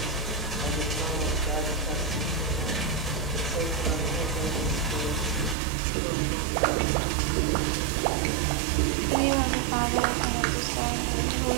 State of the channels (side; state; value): left; drops out; at 5.6 s